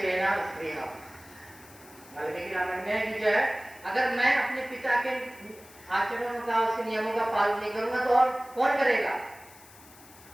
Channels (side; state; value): left; noise; hiss, 22 dB below the sound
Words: स्त्रीहा। वाल्मीकि रामायण में कि जो है, अगर मैं अपने पिता के आचरणों का, उसके नियमों का पालन नहीं करूंगा तो और कौन करेगा।